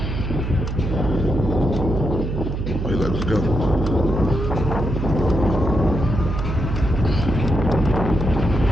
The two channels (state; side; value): noise; right; hum, 3 dB below the sound